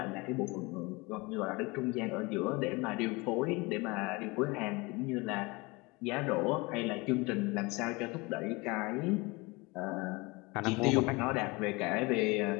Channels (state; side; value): quieter; right; 25.2 dB